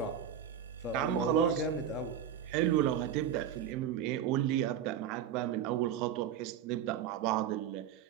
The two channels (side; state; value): left; quieter; 9.1 dB